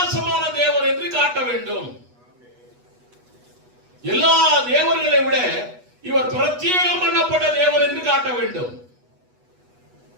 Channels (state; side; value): late; left; 8.2 ms